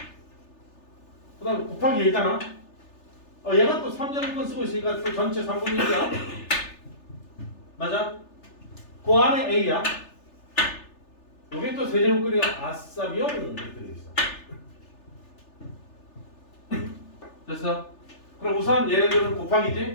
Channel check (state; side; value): late; right; 3.4 ms